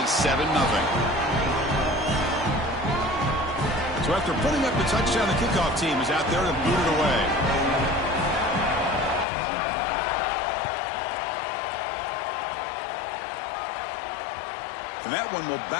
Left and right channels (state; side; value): drops out; right; at 9.2 s